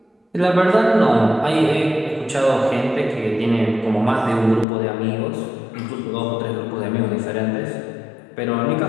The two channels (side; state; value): right; drops out; at 4.7 s